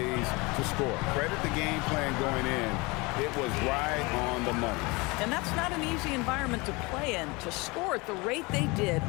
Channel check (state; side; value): quieter; right; 25.7 dB